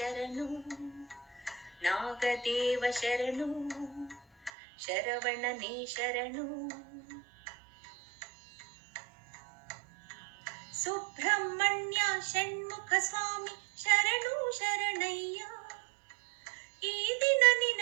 ನಾಗದೇವ ಶರಣು, ಶರವಣನೇ ಶರಣು. ಸುಬ್ರಹ್ಮಣ್ಯ ಷಣ್ಮುಖ ಸ್ವಾಮಿ ಶರಣು ಶರಣಯ್ಯ, ಈ ದಿನ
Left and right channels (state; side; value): drops out; left; at 4.5 s